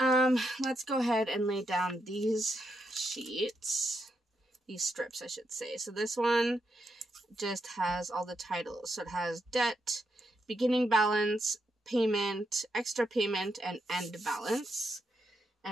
go ahead and lay down these sheets. These strips, I should say. So this one just has all the titles. So it has debt, beginning balance, payment, extra payment, and end balance.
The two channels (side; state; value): both; normal; correlation 0.82